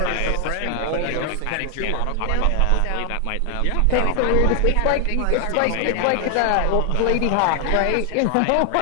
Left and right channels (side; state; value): both; different; correlation 0.00